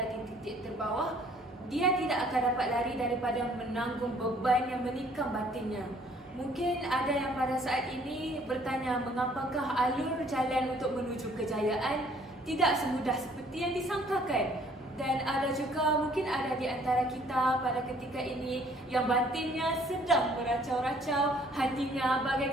di titik terbawah, dia tidak akan dapat lari daripada menanggung beban yang menikam batinnya. Mungkin ada yang pada saat ini bertanya mengapakah alur jalan untuk menuju kejayaan tidak semudah seperti yang disangkakan. Dan ada juga mungkin ada di antara kita pada ketika ini yang batinnya sedang beracau-racau, hatinya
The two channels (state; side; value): normal; both; correlation 0.59